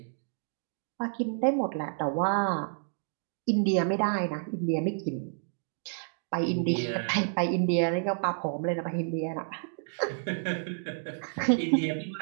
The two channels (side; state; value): left; silent; digital silence